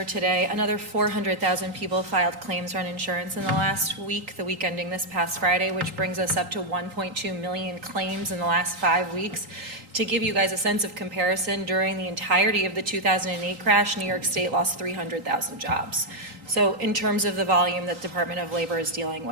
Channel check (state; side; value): late; left; 3.8 ms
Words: today, another 400,000 people filed claims for uninsurance in the last week, the week ending this past Friday, which brings us up to 1.2 million claims in the last 5 weeks. To give you guys a sense of comparison, during the entirety of the 2008 crash, New York State lost 300,000 jobs. So in terms of the volume that the Department of Labor is dealing